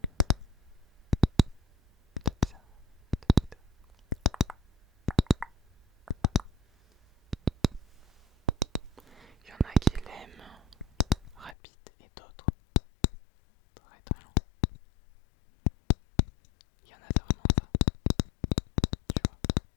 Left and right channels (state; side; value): drops out; right; at 11.6 s